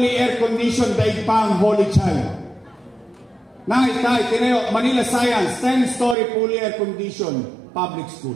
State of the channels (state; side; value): drops out; left; at 6.2 s